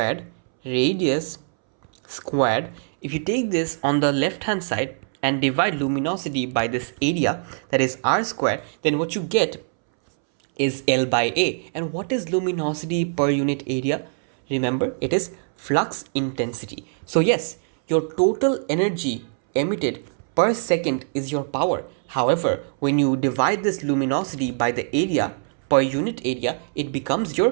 if you take this on the left hand side and divide luminosity by this area, that is r squared, then what you get is L by A. And what is luminosity per unit area? Remember, it is flux intensity. So yes, your total energy emitted per second is your power. However, when you divide this luminosity by the area per unit area, it becomes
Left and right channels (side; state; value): left; silent; 63 dB below the other